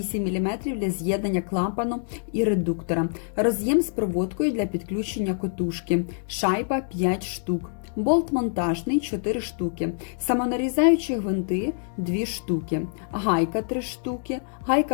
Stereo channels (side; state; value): right; silent; digital silence